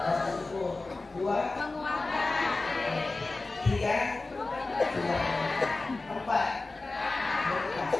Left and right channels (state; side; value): quieter; right; 3.3 dB